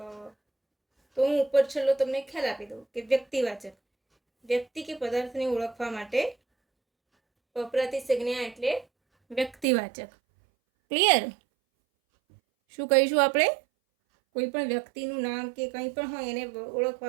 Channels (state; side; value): drops out; left; at 9.7 s